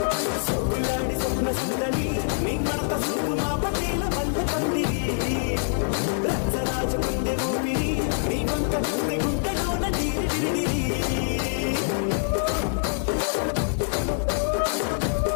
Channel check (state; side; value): silent; right; 62 dB below the other